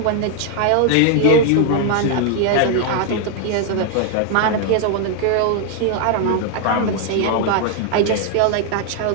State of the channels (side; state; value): both; different; correlation 0.00